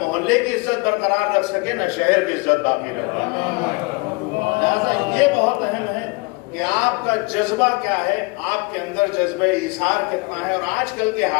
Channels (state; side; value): quieter; right; 27.8 dB